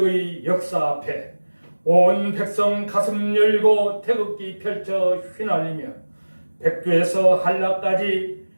역사 앞에 온 백성 가슴 열고 태극기 펼쳐 휘날리며 백두에서 한라까지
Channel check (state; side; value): inverted; both; correlation -1.00